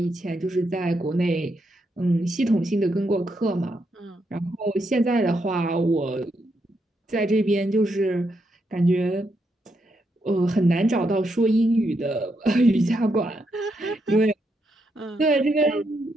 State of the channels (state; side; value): normal; both; correlation 0.80